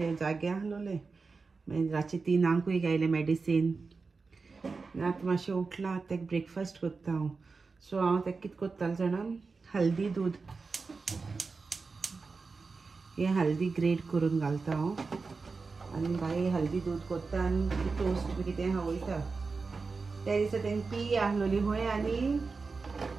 जागे आसलोलें. मागीर रातचे 3 घायलें मेडिसीन. आतां मातशें उठलां. आतां ताका ब्रेकफास्ट करता हांव. सो हांव ताका कितें करतालें जाणा, हल्दी दूद, हें हल्दी ग्रेट करून घालता हांव. आनी बाय हल्दी दूद करता आनी टोस्ट बी कितें खावयता. त्या दिसा तेंगे पी आहलोली खंय आनी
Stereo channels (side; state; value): left; quieter; 4.4 dB